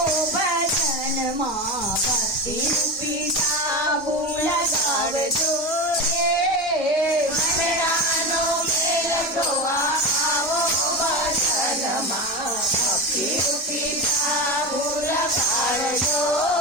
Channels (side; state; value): both; normal; correlation 0.21